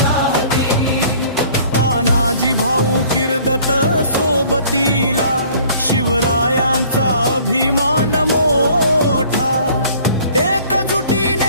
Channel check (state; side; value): inverted; both; correlation -0.54